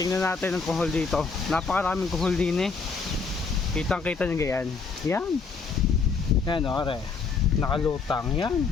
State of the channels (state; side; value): quieter; right; 4.9 dB